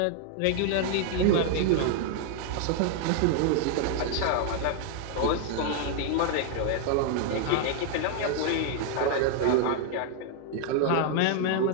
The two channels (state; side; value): different; both; correlation 0.00